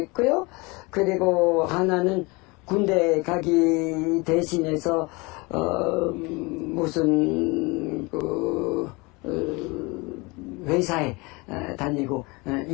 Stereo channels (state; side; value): quieter; right; 26.1 dB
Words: 그리고 하나는 군대 가기 대신해서 무슨 회사에 다니고